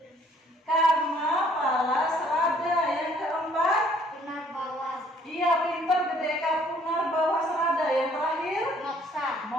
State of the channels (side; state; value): both; normal; correlation 0.61